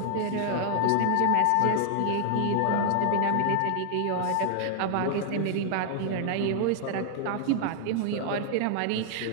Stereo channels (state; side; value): different; both; correlation 0.00